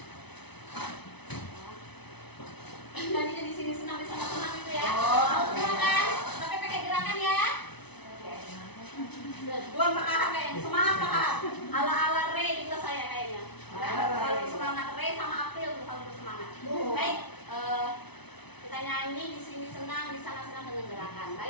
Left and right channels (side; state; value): right; late; 0.99 ms